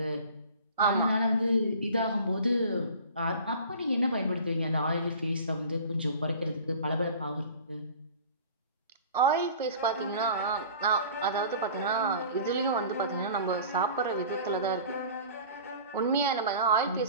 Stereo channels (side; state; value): both; inverted; correlation -0.43